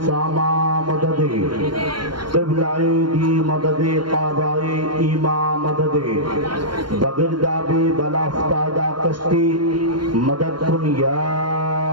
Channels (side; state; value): left; late; 0.72 ms